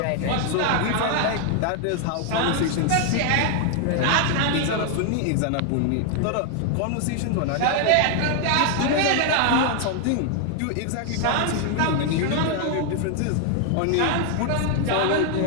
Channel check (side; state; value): both; different; correlation 0.00